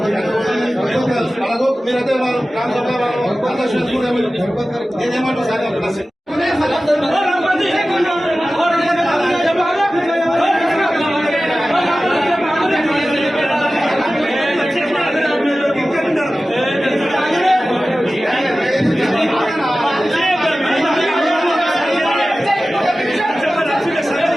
మీరైతే నేనేమంటారు సార్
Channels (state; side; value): normal; both; correlation 0.96